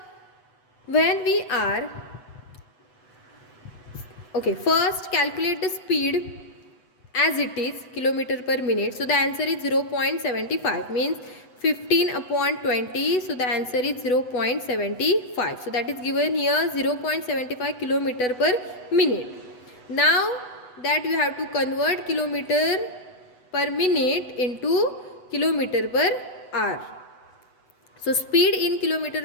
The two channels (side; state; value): right; late; 8.0 ms